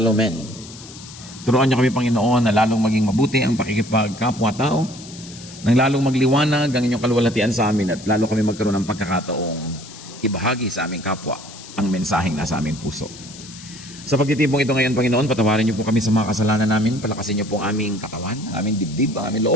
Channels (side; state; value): left; noise; hiss, 16 dB below the sound